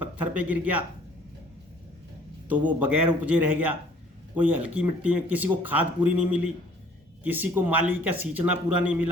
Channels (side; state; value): both; normal; correlation 0.56